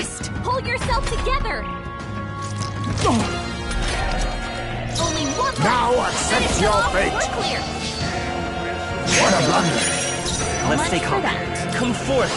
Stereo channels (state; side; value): identical; both; correlation 1.00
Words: Pull yourself together. Only one left. Now accept Finish your them off. fate. We're clear. What a blunder. Let's stay Much for calm. that. Come forth,